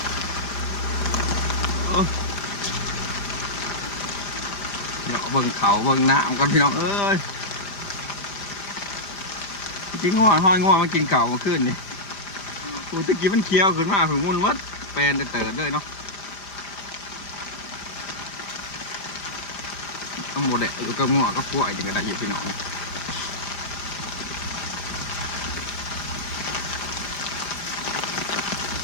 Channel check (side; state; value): right; late; 5.0 ms